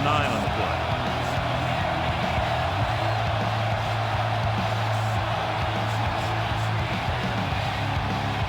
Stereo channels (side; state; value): both; identical; correlation 1.00